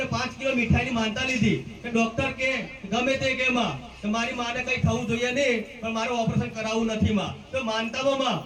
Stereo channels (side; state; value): both; identical; correlation 1.00